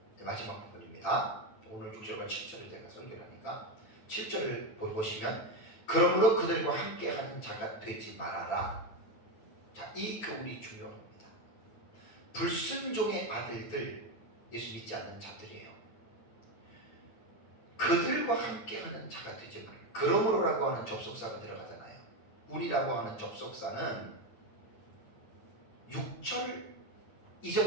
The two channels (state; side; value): late; right; 8.8 ms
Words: 마지막 부분입니다. 오늘 6절과 7절을 제가 설교를 하니까 7절을 보시면 그러므로 그들과 함께하는 자가 되지 말아라. 자, 이 교훈이 중요합니다. 불순종의 아들들, 예수 믿지 않는 자들이에요. 그들과 함께하는 자가 되지 말고 그러므로라고 하는 접속사가 들어가잖아요. 우리라고 하는 접속사는 6절